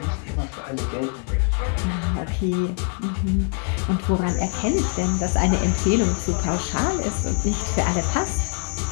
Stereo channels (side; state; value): right; quieter; 38.3 dB